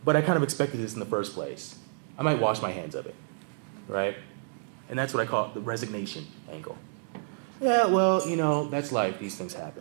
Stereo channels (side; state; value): left; silent; digital silence